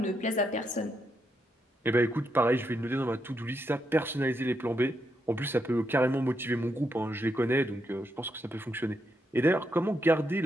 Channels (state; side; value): normal; both; correlation 0.81